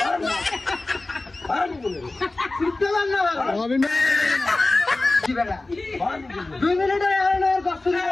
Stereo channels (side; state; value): right; quieter; 3.0 dB